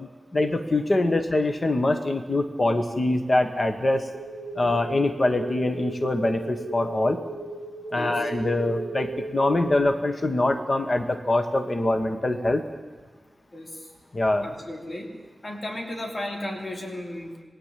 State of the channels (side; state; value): both; normal; correlation 0.94